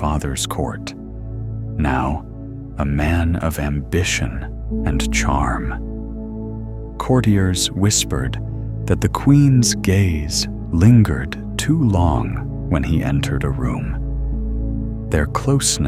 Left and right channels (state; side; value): identical; both; correlation 1.00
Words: court, now a man of ambition and charm. Courtiers whispered that the Queen's gaze lingered too long when he entered a room. Their